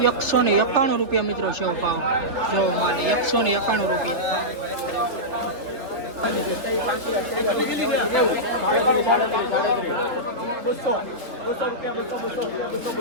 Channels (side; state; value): left; late; 3.5 ms